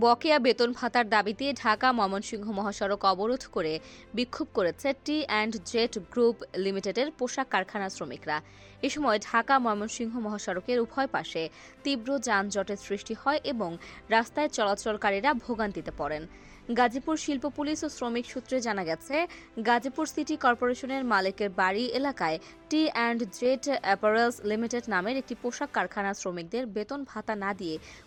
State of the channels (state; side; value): identical; both; correlation 1.00